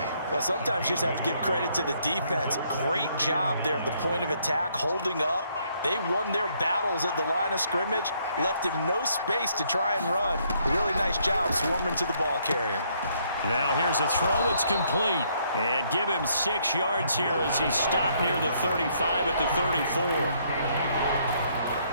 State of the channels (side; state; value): both; inverted; correlation -0.69